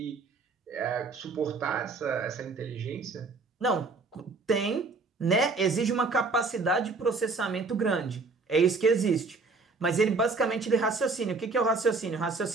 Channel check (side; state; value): left; quieter; 4.0 dB